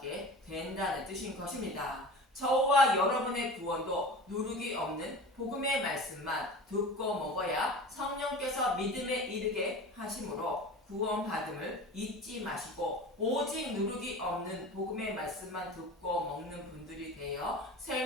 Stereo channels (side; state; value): both; normal; correlation 0.35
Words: 된다는 뜻인 것입니다. 저와 여러분의 구원도 누룩이 없는 복음의 말씀만 듣고 먹어야 성령께서 믿음에 이르게 하심으로 구원받음을 잊지 마시고 오직 누룩이 없는 복음의 말씀만 듣고 먹는 분들이 되어